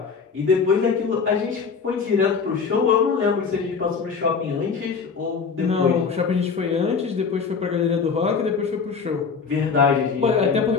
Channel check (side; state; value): right; quieter; 5.6 dB